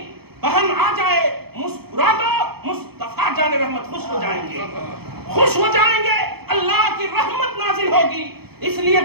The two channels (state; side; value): late; left; 0.96 ms